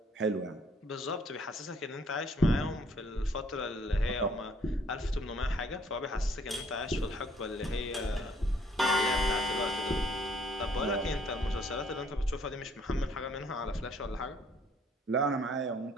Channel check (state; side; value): normal; both; correlation 0.63